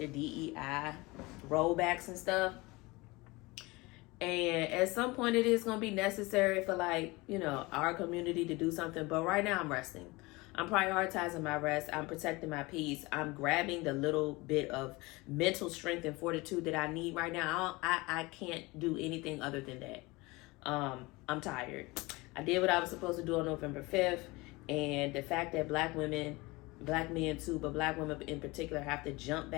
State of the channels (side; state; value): right; quieter; 23.2 dB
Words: DEI rollbacks and stuff. And at some point it is going to be necessary for, like, you know, our community to do something. But right now I'm resting. I'm prioritizing my rest. I'm protecting my peace. I'm grabbing the little bit of mental strength and fortitude that I need right now. I can't do anything other than that. I'm tired. I did what I was supposed to do on November 5th. And the fact that black women, black men too, but black women in particular, have to jump